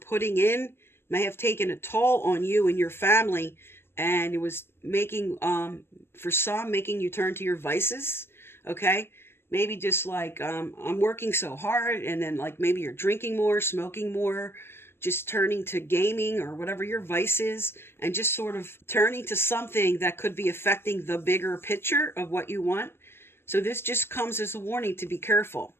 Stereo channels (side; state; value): right; late; 0.12 ms